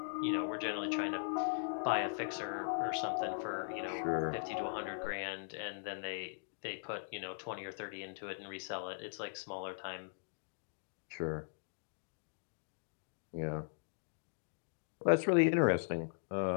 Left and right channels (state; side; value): silent; right; digital silence